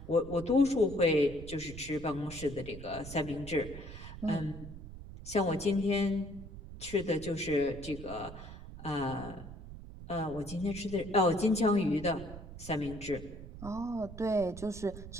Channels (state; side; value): noise; right; rumble, 12 dB below the sound